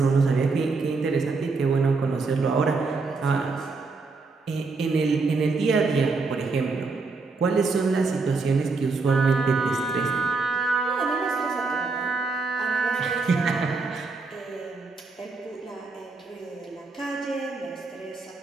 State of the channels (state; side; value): quieter; left; 4.1 dB